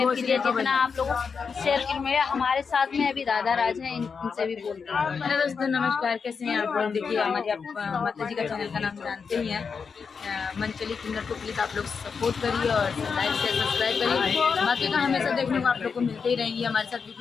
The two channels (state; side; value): quieter; right; 5.7 dB